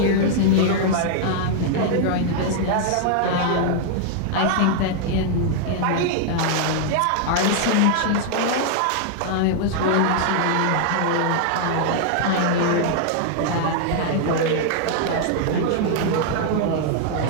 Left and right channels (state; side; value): different; both; correlation -0.01